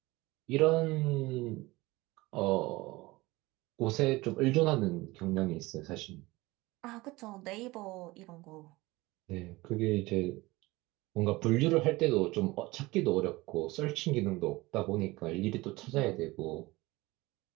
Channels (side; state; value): left; quieter; 21.0 dB